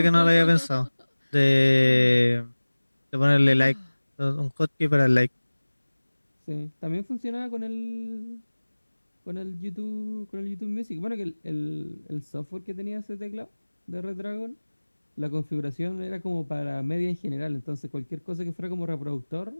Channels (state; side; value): inverted; both; correlation -1.00